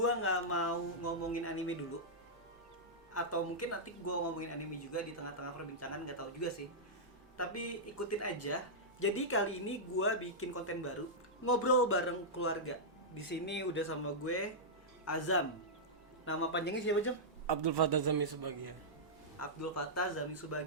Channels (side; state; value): both; normal; correlation -0.10